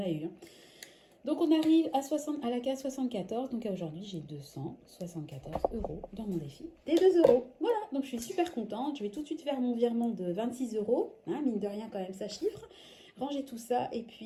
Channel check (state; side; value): identical; both; correlation 1.00